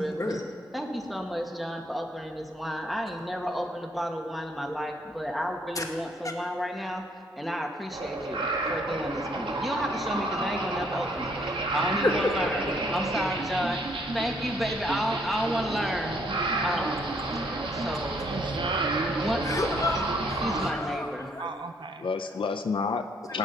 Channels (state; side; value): normal; both; correlation 0.67